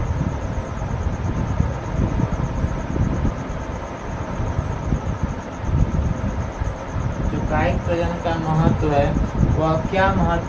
कायिक प्रजनन का महत्व है वह क्या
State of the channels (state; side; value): identical; both; correlation 1.00